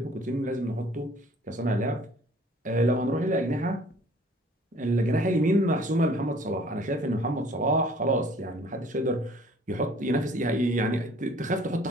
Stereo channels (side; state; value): both; normal; correlation 0.54